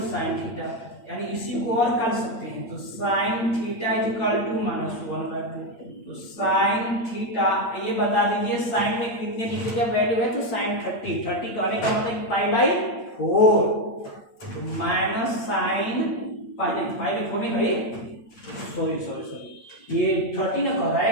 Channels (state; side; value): late; right; 8.7 ms